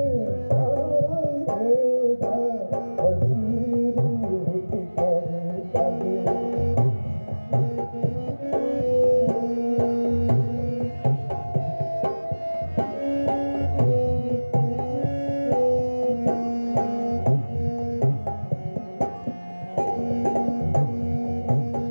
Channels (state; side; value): inverted; both; correlation -1.00